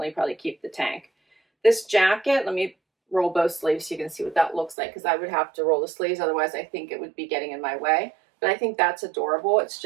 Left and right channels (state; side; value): drops out; left; at 4.8 s